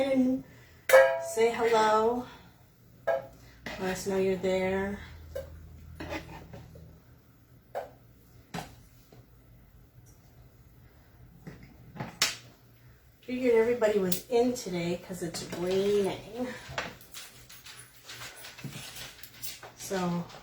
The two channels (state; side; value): identical; both; correlation 1.00